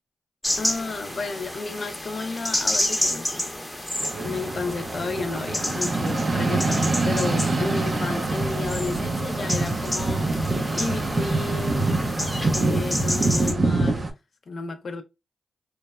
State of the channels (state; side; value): normal; both; correlation 0.89